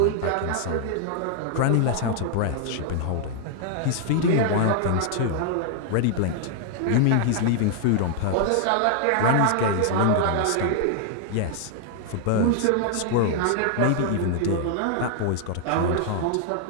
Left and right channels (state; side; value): different; both; correlation 0.00